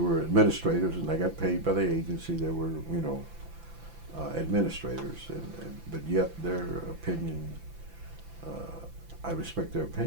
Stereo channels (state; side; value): late; left; 5.9 ms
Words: were administrators, and they got paid by the agency. There were, administrators, but yet their opinion, I respect their